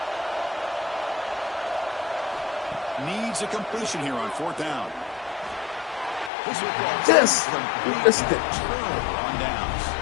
Needs a completion here on fourth down. This will Yes. complete turnover on downs.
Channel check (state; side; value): drops out; right; at 6.3 s